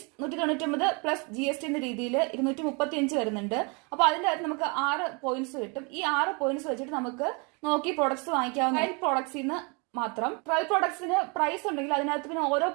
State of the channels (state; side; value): quieter; left; 31.9 dB